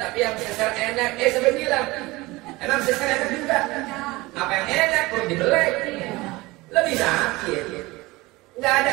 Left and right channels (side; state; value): left; quieter; 21.4 dB